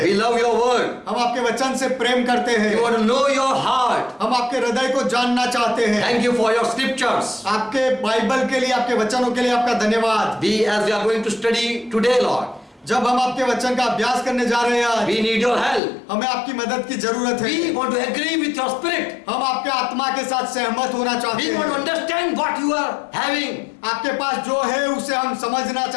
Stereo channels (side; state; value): right; drops out; at 15.8 s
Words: We love your word. हम आपके वचन से प्रेम करते हैं। We want to know your heart. हम आपके हृदय को जानना चाहते हैं। Thank you for your scriptures. आपके बाइबल के लिए, आपके वचनों के लिए आपका धन्यवाद। As we are going to study today, Lord, जब हम आपके वचन का अभ्यास करने जा रहे हैं, we need your help. हमें आपकी मदद की जरूरत है। We want to agree with your spirit. हम आपके आत्मा के साथ सहमत होना चाहते We want to हैं। understand what you are having. आपके पास जो है उसे हम समझना